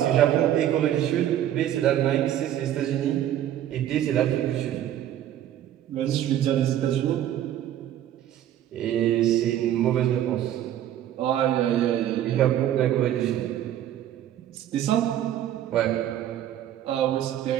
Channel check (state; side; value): quieter; left; 11.6 dB